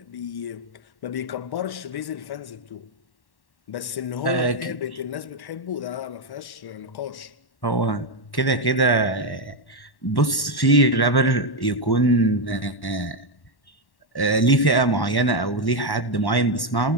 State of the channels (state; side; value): late; right; 1.1 ms